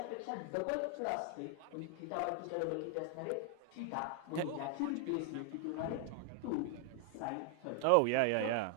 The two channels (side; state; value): both; different; correlation 0.00